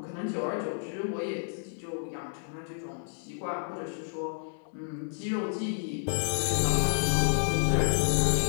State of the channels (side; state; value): right; silent; digital silence